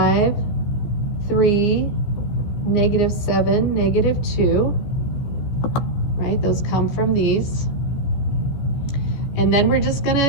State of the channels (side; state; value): right; late; 14 ms